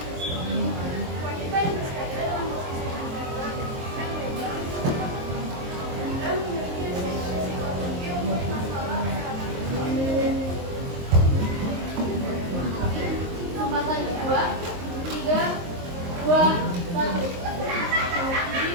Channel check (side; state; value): left; late; 23 ms